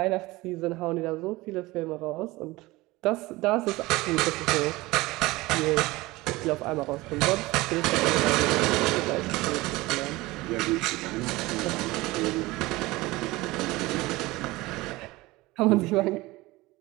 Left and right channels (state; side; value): quieter; left; 20.4 dB